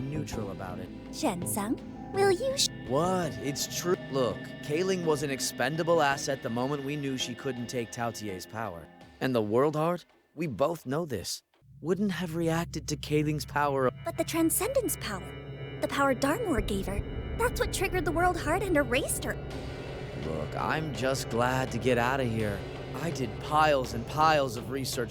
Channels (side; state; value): both; identical; correlation 1.00